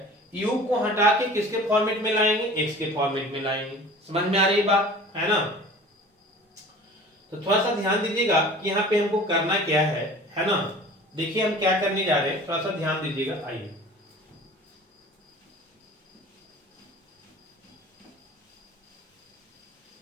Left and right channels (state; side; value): normal; both; correlation 0.42